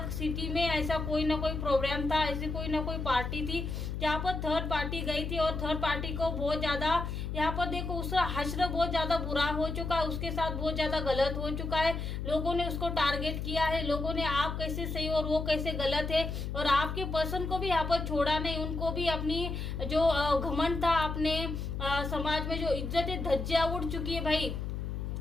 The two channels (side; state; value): left; noise; hum, 4 dB below the sound